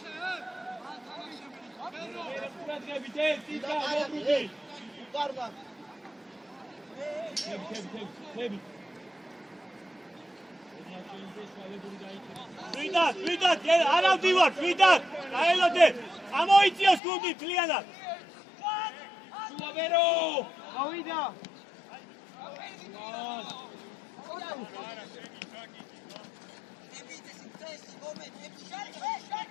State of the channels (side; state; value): right; drops out; at 17.0 s